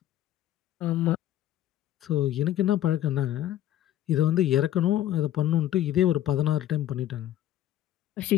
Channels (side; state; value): right; quieter; 12.5 dB